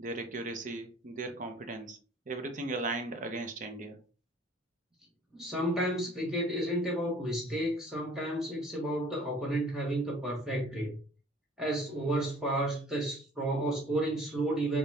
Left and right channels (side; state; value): both; normal; correlation 0.52